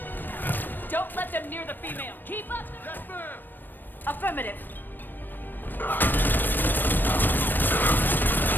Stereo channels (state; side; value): late; right; 0.092 ms